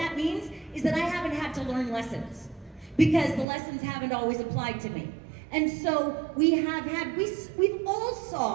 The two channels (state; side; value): drops out; left; at 3.5 s